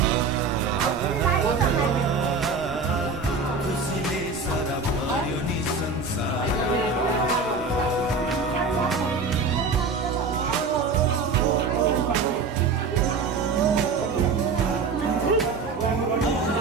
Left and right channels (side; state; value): left; quieter; 4.4 dB